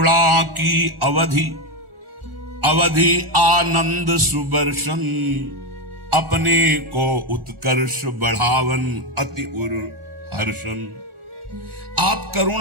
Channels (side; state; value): left; late; 1.4 ms